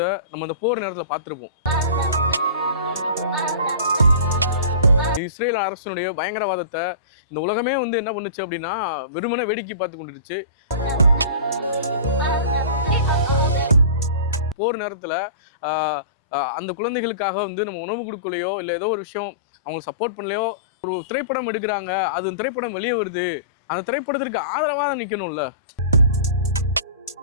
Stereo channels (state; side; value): inverted; both; correlation -0.36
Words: நம்ம இந்த போர் நேரத்தில் பார்த்துருப்போம். இஸ்ரேல் அரசினுடைய பயங்கரவாதத்தை இந்த உலகமே என்ன பண்ணுச்சு அப்படின்னா வெறுமனே வேடிக்கை பார்த்து கொண்டுருச்சு. போர் நேரத்தில் அந்த குழந்தைகளுக்காக நம்ம உணவு கொடுக்கலையோ இல்லை ஏதோ ஒரு விஷயம் அவங்களுக்கு சப்போர்ட் பண்ணலையோ ஒரு திரைப்படம் எடுக்கிறாங்க, அது திரைப்படம் வெளியே வருது, அந்த திரைப்படத்திற்கு ஆதரவாக நிற்கணும்ல.